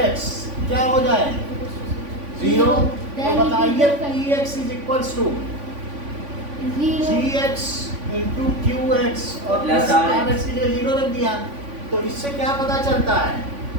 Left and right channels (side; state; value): left; late; 3.5 ms